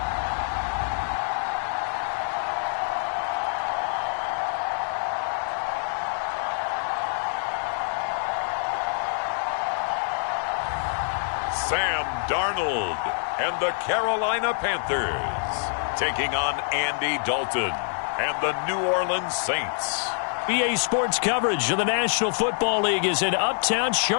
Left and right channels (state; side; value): silent; right; 61 dB below the other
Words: Sam Darnold and the Carolina Panthers taking on Andy Dalton and the New Orleans Saints. EA Sports coverage of the National Football League is in uptown